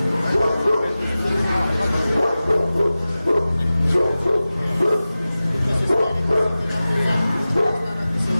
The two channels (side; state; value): both; inverted; correlation -0.96